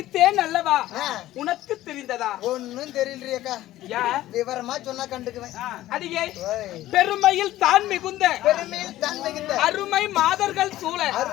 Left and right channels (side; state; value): right; quieter; 14.9 dB